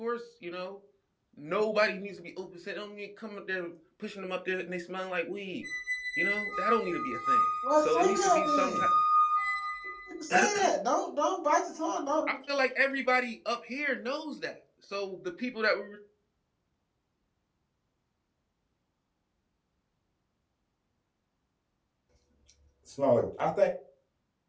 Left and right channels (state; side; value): identical; both; correlation 1.00